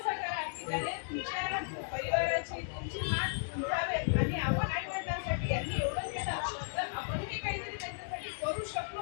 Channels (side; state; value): right; silent; digital silence